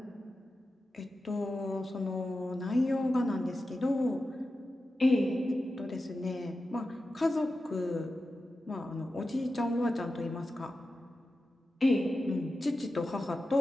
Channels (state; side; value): normal; both; correlation 0.92